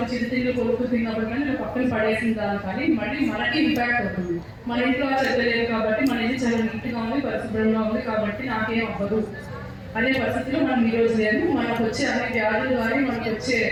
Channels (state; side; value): identical; both; correlation 1.00